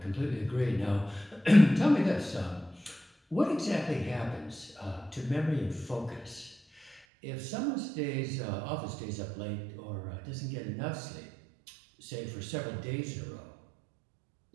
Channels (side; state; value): left; drops out; at 7.0 s